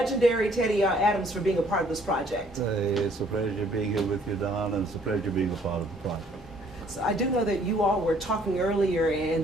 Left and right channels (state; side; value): normal; both; correlation 0.61